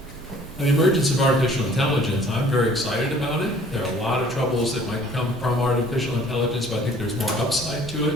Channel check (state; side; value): noise; left; hum, 27 dB below the sound